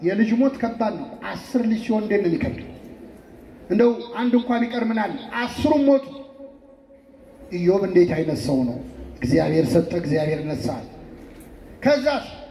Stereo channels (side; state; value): both; identical; correlation 1.00